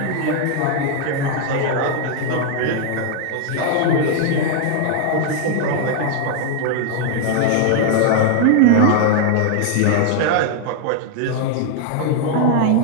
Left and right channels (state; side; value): different; both; correlation 0.00